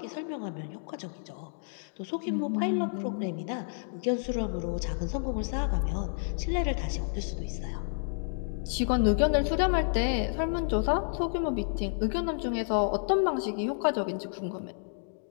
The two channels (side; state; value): right; silent; digital silence